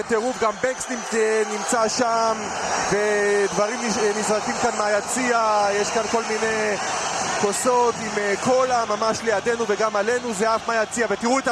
גם בנקס נמצא שם, ודברים נזרקים כאן מהיציע, יש כאן כל מיני כוסות עם קולה ממש לידינו וגם עלינו, זה אף מהיציע, ותראו את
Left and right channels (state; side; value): identical; both; correlation 1.00